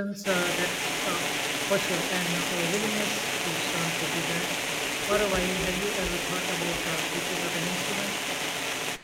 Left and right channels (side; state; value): both; identical; correlation 1.00